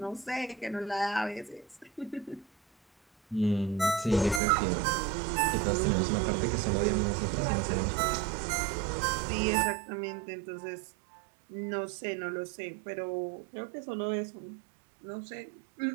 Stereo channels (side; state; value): left; drops out; at 4.4 s